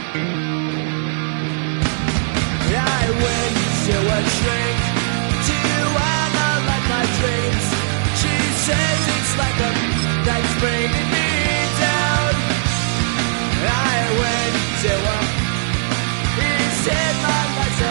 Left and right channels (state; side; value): silent; left; digital silence